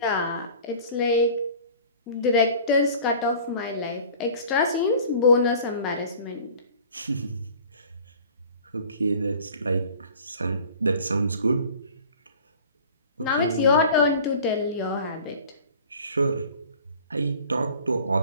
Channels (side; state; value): both; inverted; correlation -0.45